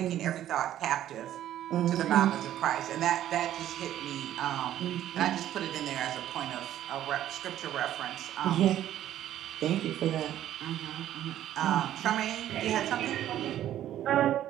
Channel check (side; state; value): left; quieter; 12.1 dB